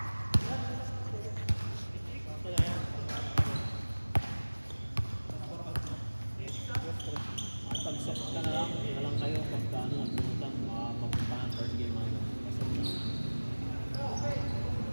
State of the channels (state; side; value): inverted; both; correlation -1.00